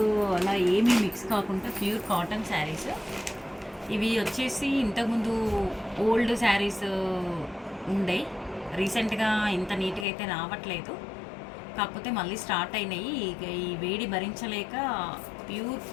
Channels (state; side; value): drops out; right; at 10.1 s